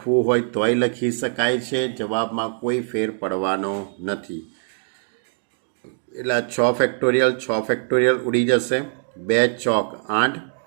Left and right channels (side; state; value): left; silent; digital silence